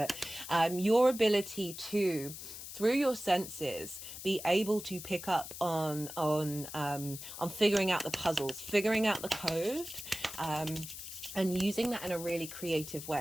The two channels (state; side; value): noise; left; hiss, 11 dB below the sound